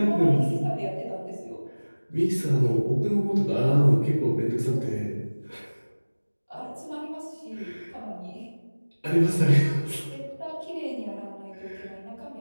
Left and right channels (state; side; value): inverted; both; correlation -1.00